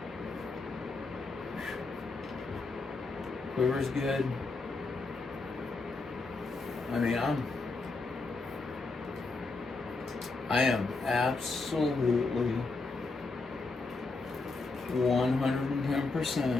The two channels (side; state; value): right; quieter; 3.7 dB